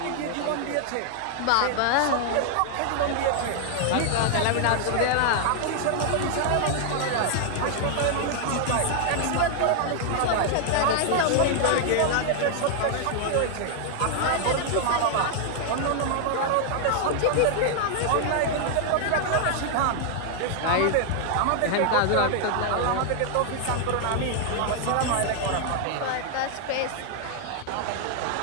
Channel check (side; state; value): both; different; correlation 0.00